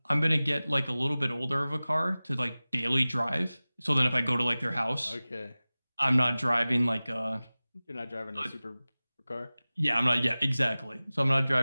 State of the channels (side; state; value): both; inverted; correlation -0.98